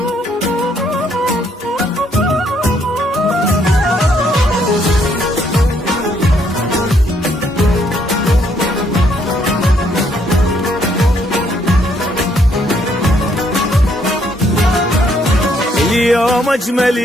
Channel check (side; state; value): both; normal; correlation 0.70